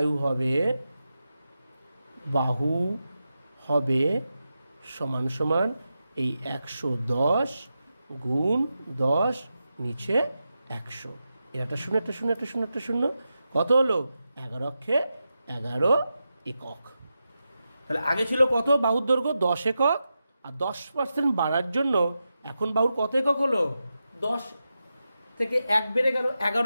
বাহু হবে সমান সমান এই 110 গুণ 10 নিচে 100, একটা শূন্য একটা শূন্য একটা শূন্য একটা শূন্য, কত হলো 11 অক্ষে 11 একক। তাহলে আগে ছিল কত বাহুর দৈর্ঘ্য 10 একক, আর 10% বাড়ার জন্য এখন বাহুর কত একক হলো 10 থেকে 1 বেড়ে গেল,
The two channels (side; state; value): both; inverted; correlation -0.90